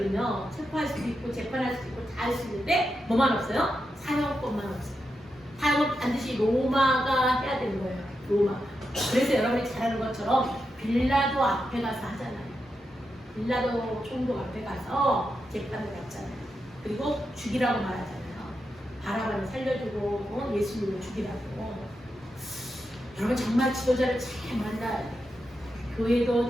체포할 수도 있고 재판할 수도 있고 다 할 수 있는데 뭐만 없어요? 사형법만 없어요. 사용은 반드시 로마가 해야 되는 거예요. 로마. 그래서 여러분이 잘 아는 것처럼 빌라도 앞에 가서 하잖아요. 빌라도 총독 앞에 가서 재판을 받잖아요. 그리고 죽이라고 말하잖아요. 바라바를 살려주고 예수님을 죽이라고. 여러분 정말 지도자를 잘 만나야 돼요. 교회도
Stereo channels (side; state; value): both; normal; correlation 0.87